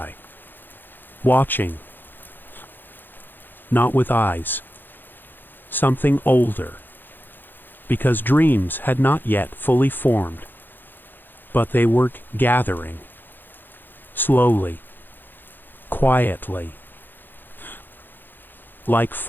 watching, not with eyes. Something older, because dreams had not yet fully formed, but they were gathering, slowly, quietly, like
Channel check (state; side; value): late; right; 0.093 ms